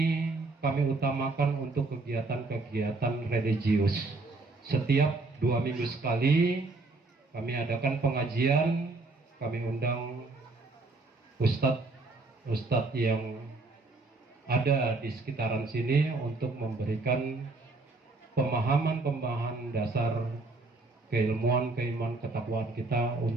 kami utamakan untuk kegiatan-kegiatan religius. Setiap 2 minggu sekali kami adakan pengajian, kami undang ustadz yang ada di sekitaran sini untuk memberikan pemahaman dasar keilmuan, keimanan, ketakwaan kita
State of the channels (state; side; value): quieter; left; 3.4 dB